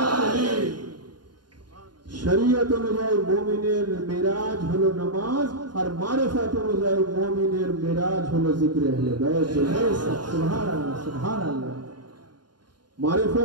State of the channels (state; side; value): late; left; 0.71 ms